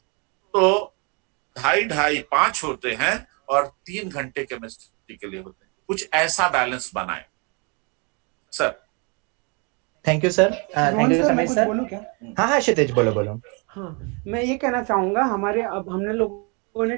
2.5 5 होते हैं, और 3 घंटे केमिस्ट्री के लिए होते हैं। कुछ ऐसा बैलेंस बनाएं sir. Thank you sir. Thank Rohan you sir, मैं समय कुछ सर। बोलूं क्या? हाँ हाँ क्षितिज, बोलो बोलो। हाँ, मैं ये कहना चाहूंगा, हमारे अब हमने लोगों ने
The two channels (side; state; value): left; quieter; 33.2 dB